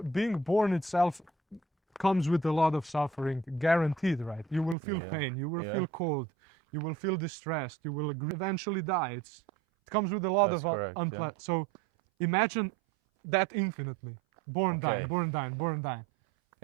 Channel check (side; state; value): left; drops out; at 4.8 s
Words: being born itself comes with a lot of suffering, guaranteed, right? You will feel pain, you will feel cold, you will feel distressed, you will eventually die. It comes with a lot of unpleasant. So imagine that infinitely. Born, dying, born, dying, born, dying.